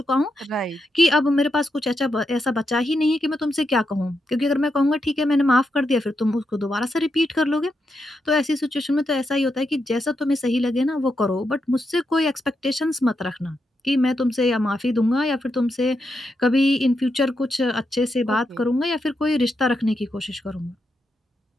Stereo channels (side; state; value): both; normal; correlation 0.84